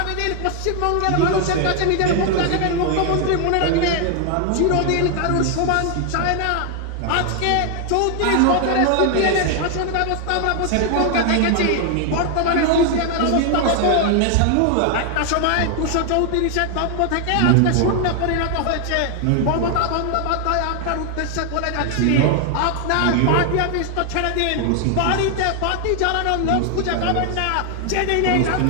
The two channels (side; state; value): both; different; correlation 0.00